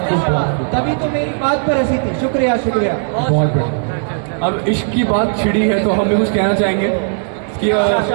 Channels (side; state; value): left; silent; 64 dB below the other